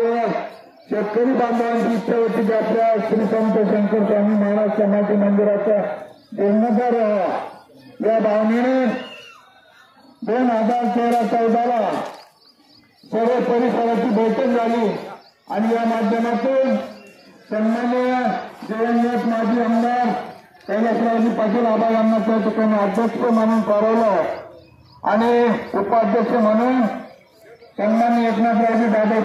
शेतकरी बांधवांची इच्छा होती की आपल्या श्री संत शंकर स्वामी महाराज समाधी मंदिराचा जीर्णोद्धार व्हावा या भावनेने 2013-14 सर्व परिसराची बैठक झाली आणि या माध्यमातून सन्माननीय दिवंगत माजी आमदार कैलासरावजी पाटील आबा यांना त्या ठिकाणी अध्यक्ष म्हणून ठरवलं आणि उपाध्यक्ष म्हणून सन्माननीय एकनाथरावजी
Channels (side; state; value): both; identical; correlation 1.00